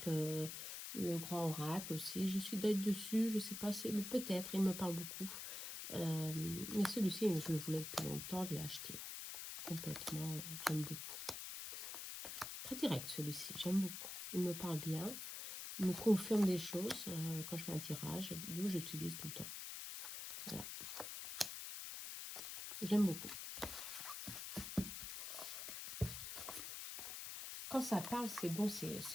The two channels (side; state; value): left; noise; hiss, 6 dB below the sound